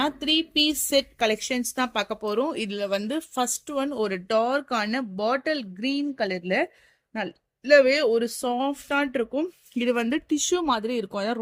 3 பீஸ் செட் கலெக்ஷன்ஸ் தான் பார்க்க போகிறோம். இதில் வந்து ஃபர்ஸ்ட் ஒன் ஒரு டார்க்கான பாட்டில் கிரீன் கலரில் நல்லாவே ஒரு சாஃப்டாக இருக்கும். இது வந்து டிஷ்யூ மாதிரி இருக்கும். அதான்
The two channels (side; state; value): both; identical; correlation 1.00